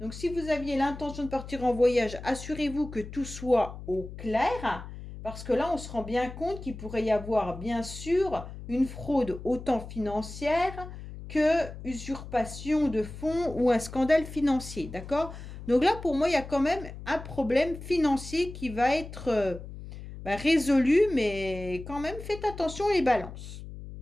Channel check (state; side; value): noise; left; hum, 12 dB below the sound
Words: si vous aviez l'intention de partir en voyage, assurez-vous que tout soit au clair. Parce que là, on se rend bien compte qu'il pourrait y avoir, bien sûr, une fraude autant financière que usurpation de fonds ou un scandale financier, d'accord? Donc là, pour moi, il y a quand même un problème financier qui va être résolu, mais quand même, faites attention les balances.